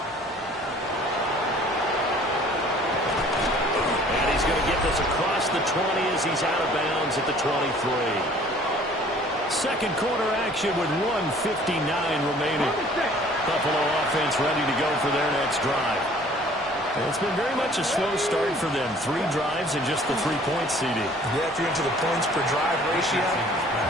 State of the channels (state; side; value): normal; both; correlation 0.53